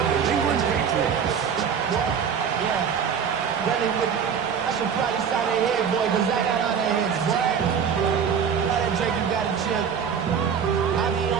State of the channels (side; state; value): left; quieter; 7.2 dB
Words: New England Patriots. Yeah, running with it. I should probably sign a head, boy, because I got all that heads, boy. All that Drake, you got a chip. I be on